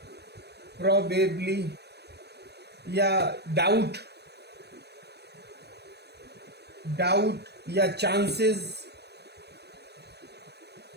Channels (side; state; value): left; late; 0.48 ms